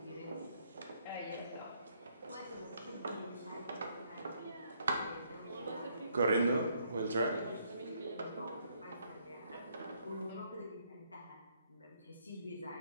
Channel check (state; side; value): inverted; both; correlation -0.70